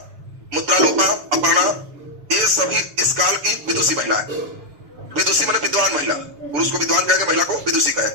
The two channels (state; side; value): late; left; 6.9 ms